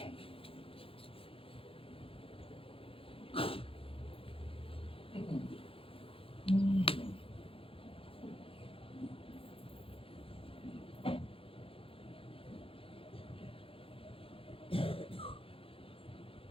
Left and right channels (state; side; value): late; right; 0.27 ms